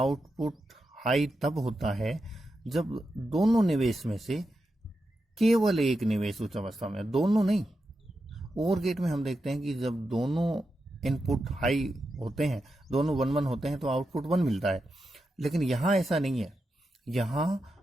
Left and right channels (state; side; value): normal; both; correlation 0.88